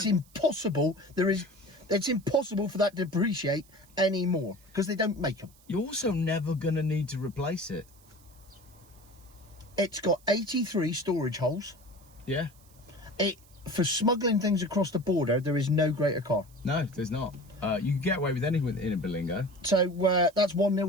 impossible. It's impossible for that to depreciate anymore because they don't make them. You're also never going to need to replace it. It's got 83 storage holes. Yeah. For smuggling things across the border, there is no greater car. No, there's not. You can get away with anything in a Berlingo. So that's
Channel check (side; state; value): right; noise; hiss, 28 dB below the sound